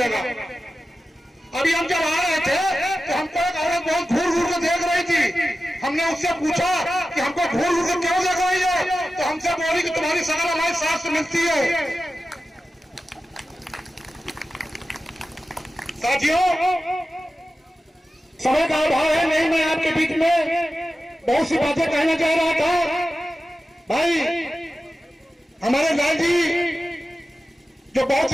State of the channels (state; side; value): normal; both; correlation 0.94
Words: अभी हम जब आ रहे थे तो हमको एक औरत बहुत घूर घूर के देख रही थी। हमने उससे पूछा कि हमको घूर घूर के क्यों देख रही है, तो हमसे बोली कि तुम्हारी शकल हमारी सास से मिलती है। साथियों, समय का अभाव है, नहीं मैं आपके बीच में बहुत सी बातें कहना चाह रहा था। भाई हमारे लाल जी जो बहुत